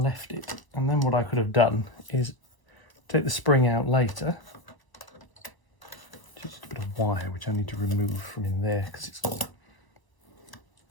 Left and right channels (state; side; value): late; right; 1.0 ms